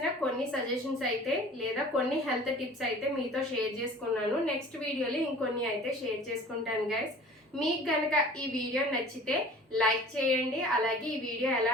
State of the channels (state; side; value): normal; both; correlation 0.45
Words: కొన్ని సజెషన్స్ అయితే లేదా కొన్ని హెల్త్ టిప్స్ అయితే మీతో షేర్ చేసుకున్నాను. నెక్స్ట్ వీడియోలో ఇంకొన్ని అయితే షేర్ చేసుకుంటాను గైస్. మీకు కనుక ఈ వీడియో నచ్చితే లైక్ చేయండి, అలాగే ఈ వీడియో ఎలా